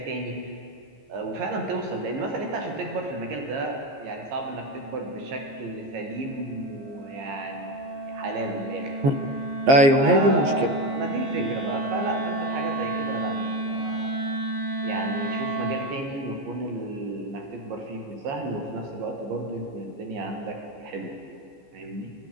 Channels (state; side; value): late; left; 15 ms